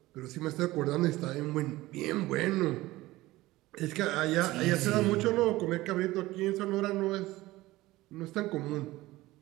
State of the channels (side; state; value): left; quieter; 18.2 dB